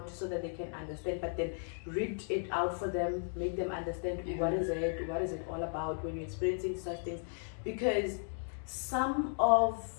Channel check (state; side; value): silent; right; digital silence